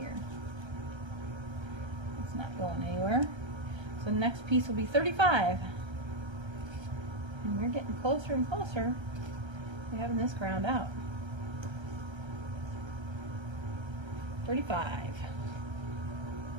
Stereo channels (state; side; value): late; left; 1.3 ms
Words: It's not going anywhere. So the next piece will be 35. And we're getting closer and closer to having this ground out. 35.